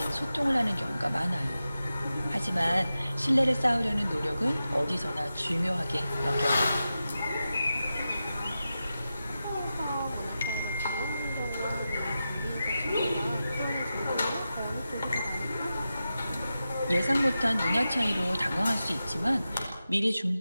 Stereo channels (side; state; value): both; inverted; correlation -0.92